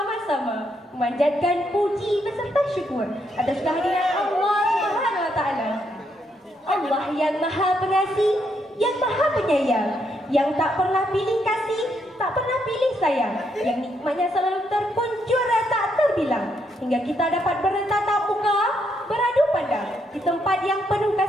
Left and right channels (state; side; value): normal; both; correlation 0.76